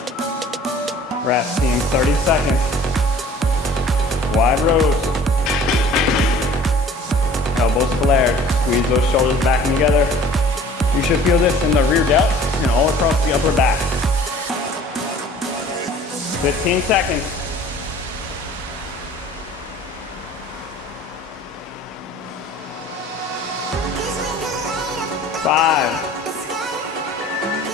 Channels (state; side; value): normal; both; correlation 0.49